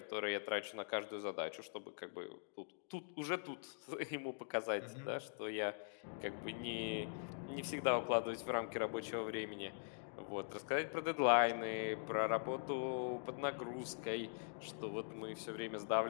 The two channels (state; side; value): silent; right; digital silence